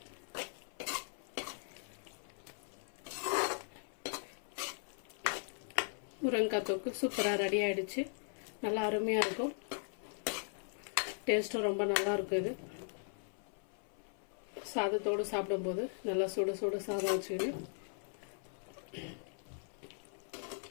முருங்கைக்காய் தொக்கு சூப்பராக ரெடி ஆயிடுச்சு. நல்லா அருமையாக இருக்கும். டேஸ்ட்டும் ரொம்ப நல்லா இருக்கும். இது சாதத்தோடு சாப்பிடும்போது நல்லா சுட சுட சாதம் வச்சுக்கிட்டு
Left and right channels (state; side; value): silent; right; 52 dB below the other